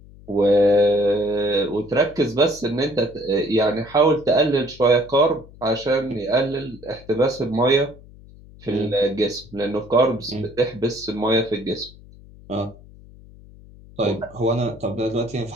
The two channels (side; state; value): left; noise; hum, 21 dB below the sound